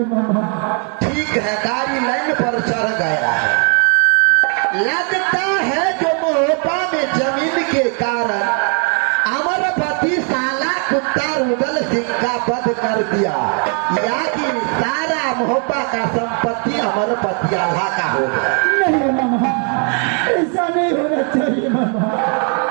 मामा। ठीक है, गाड़ी लाइन पर चढ़ गया है। लगता है जो मोहब्बा में जमीन के कारण अमरपति साला कुत्ता रुदल सिंह का वध कर दिया, या कि सारा मोहब्बा का संपत्ति अमरपति आल्हा का हो गया। नहीं मामा, ऐसा नहीं होना चाहिए मामा।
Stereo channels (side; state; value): left; quieter; 39.6 dB